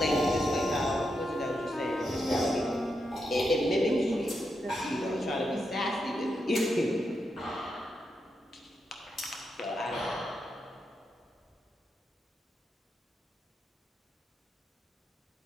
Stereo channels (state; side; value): normal; both; correlation 0.84